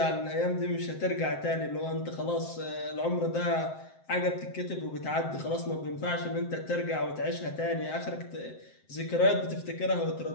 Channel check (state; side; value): late; right; 7.7 ms